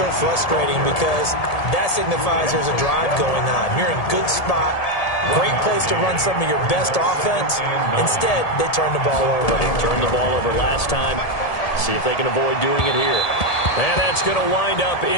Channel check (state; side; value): late; right; 1.7 ms